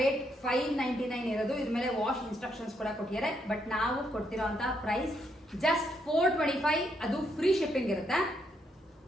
599 ಇರೋದು. ಇದ್ರ ಮೇಲೆ ವಾಶ್ ಇನ್ಸ್ಟ್ರಕ್ಷನ್ಸ್ ಕೂಡ ಕೊಟ್ಟಿದ್ದಾರೆ. ಬಟ್ ನಾವು ಕೊಡ್ತಿರೋಂತ ಪ್ರೈಸ್ ಜಸ್ಟ್ 425. ಅದು ಫ್ರೀ ಶಿಪ್ಪಿಂಗ್ ಇರುತ್ತೆ.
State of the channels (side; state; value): both; normal; correlation 0.76